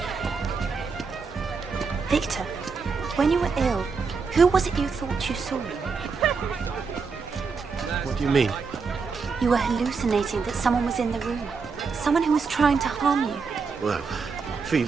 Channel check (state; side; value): quieter; left; 5.1 dB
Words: Victor, when you were ill, who was it you thought you saw? What do you mean? You were hallucinating that someone was in the room. Someone who was trying to harm you. Well,